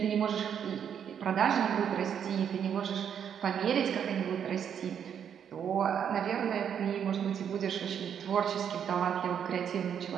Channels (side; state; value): left; quieter; 8.3 dB